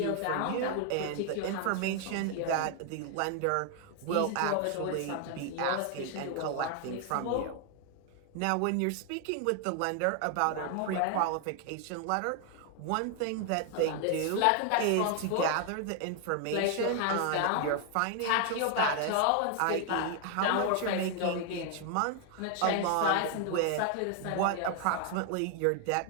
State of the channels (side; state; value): both; different; correlation 0.00